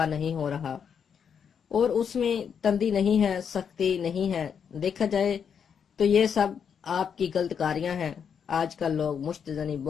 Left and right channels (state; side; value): quieter; right; 7.3 dB